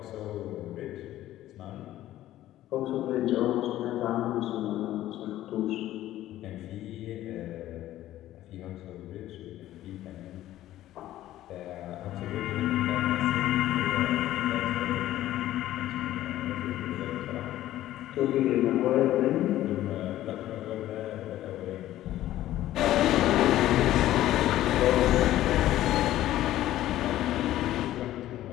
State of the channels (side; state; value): right; quieter; 14.0 dB